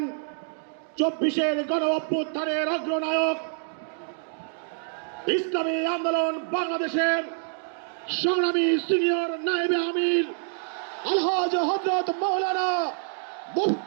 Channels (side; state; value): left; silent; digital silence